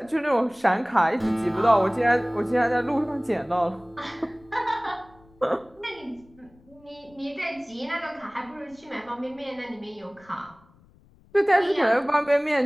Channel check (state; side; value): noise; left; rumble, 29 dB below the sound